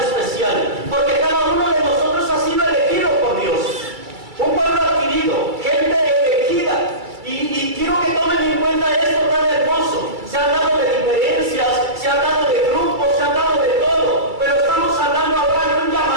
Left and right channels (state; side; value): late; left; 2.3 ms